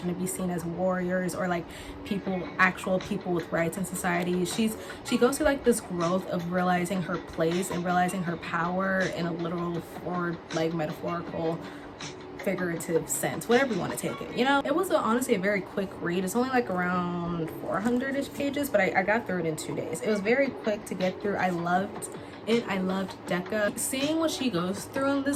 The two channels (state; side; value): identical; both; correlation 1.00